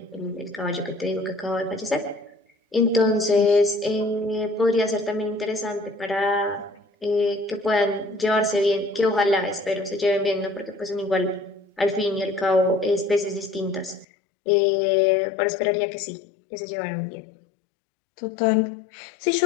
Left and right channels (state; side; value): drops out; right; at 14.1 s